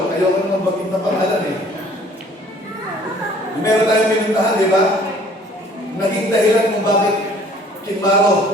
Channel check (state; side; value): normal; both; correlation 0.54